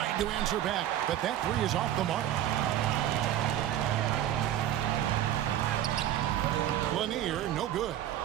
to answer back, but that three is off the mark. Lanier, no good.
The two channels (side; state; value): left; quieter; 11.7 dB